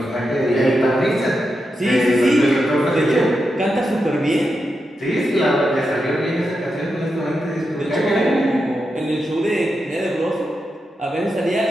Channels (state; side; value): normal; both; correlation 0.87